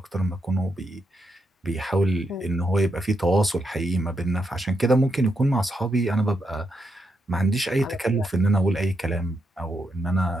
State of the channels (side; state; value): both; normal; correlation 0.82